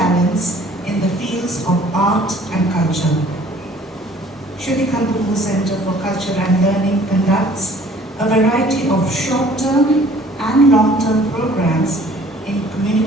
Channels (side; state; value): both; normal; correlation 0.54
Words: in the fields of art and culture. Shrutikant Guho Center for Culture and Learning conducts a variety of short-term and long-term programs in